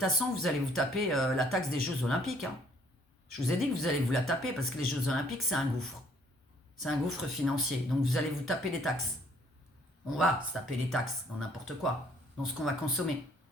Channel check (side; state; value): both; normal; correlation 0.63